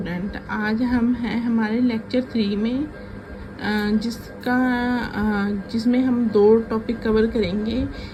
आज हम हैं हमारे लेक्चर 3 में जिसमें हम दो टॉपिक कवर करेंगे।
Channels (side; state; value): both; identical; correlation 1.00